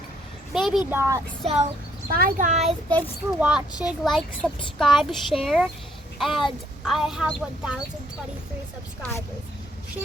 Maybe not. So bye guys. Thanks for watching. Like, subscribe, share. And I have 1,023 subscribers.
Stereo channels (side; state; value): both; normal; correlation 0.68